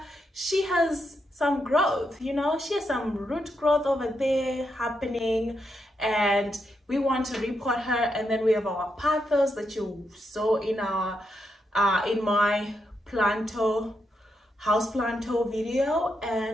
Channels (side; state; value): both; normal; correlation 0.82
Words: she has some growth, you know, she has some root growth over there happening, and we want to repot her. And then we have our Pothos that you saw in our in my houseplant video,